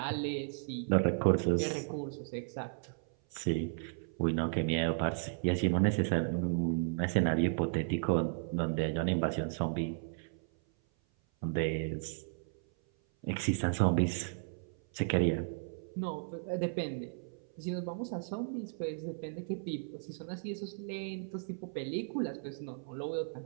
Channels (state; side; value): silent; left; 55 dB below the other